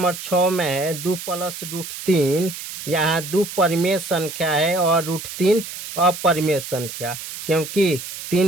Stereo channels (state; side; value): noise; right; hiss, 10 dB below the sound